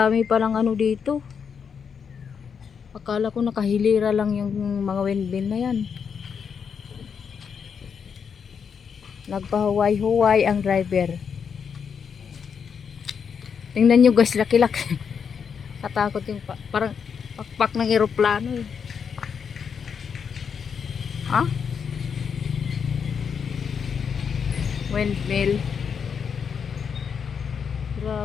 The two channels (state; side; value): quieter; right; 6.7 dB